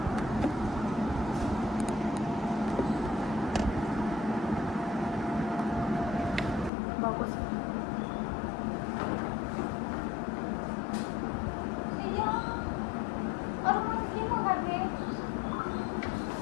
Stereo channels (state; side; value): drops out; right; at 6.7 s